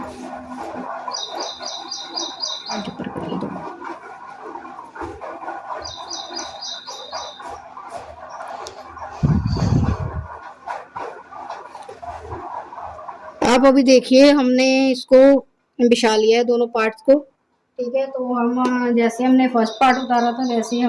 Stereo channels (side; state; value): both; identical; correlation 1.00